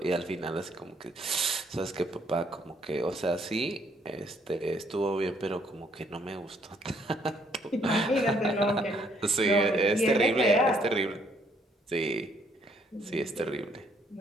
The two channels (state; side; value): normal; both; correlation 0.68